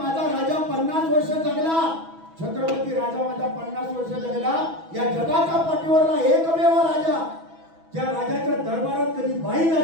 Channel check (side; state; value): left; late; 6.1 ms